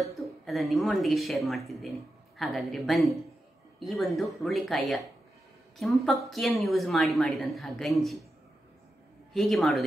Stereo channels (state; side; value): normal; both; correlation 0.89